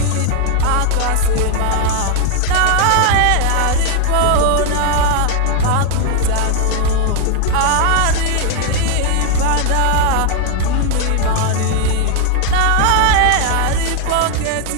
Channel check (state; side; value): different; both; correlation 0.00